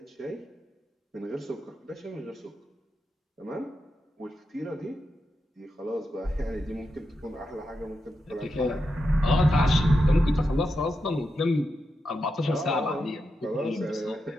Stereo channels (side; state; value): both; normal; correlation 0.87